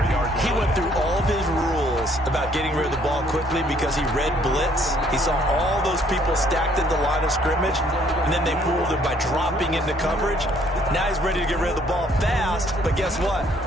He went through all of his rules about getting rid of the ball quickly because he read blitz. He saw all those people stacked at the line of scrimmage, and then they fooled him by dropping into coverage. Now he's ready to get rid of the ball fast, but guess what?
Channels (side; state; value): both; normal; correlation 0.63